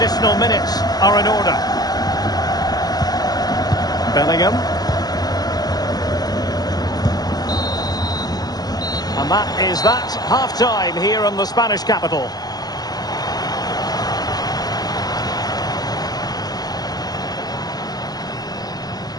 minutes are in order. Bellingham. And that is that, half-time here in the Spanish capital.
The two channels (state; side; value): late; right; 0.19 ms